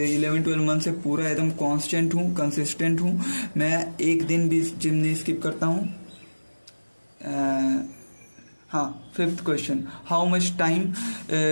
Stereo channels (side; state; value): both; inverted; correlation -1.00